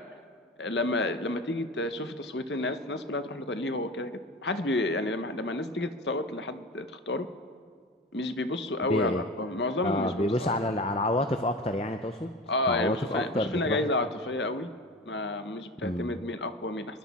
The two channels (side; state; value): both; normal; correlation 0.32